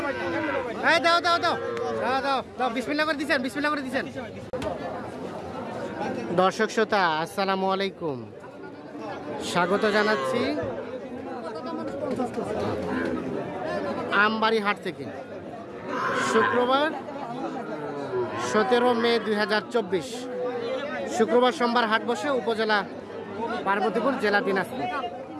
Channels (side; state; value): both; identical; correlation 1.00